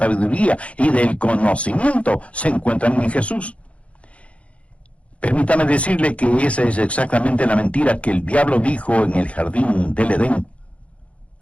y del conocimiento se encuentran en Jesús. Permítame decirle que esa es exactamente la mentira que el diablo dijo en el jardín del Edén.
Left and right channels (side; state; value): right; late; 0.063 ms